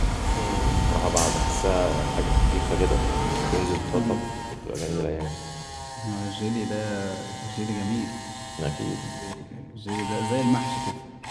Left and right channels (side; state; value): both; identical; correlation 1.00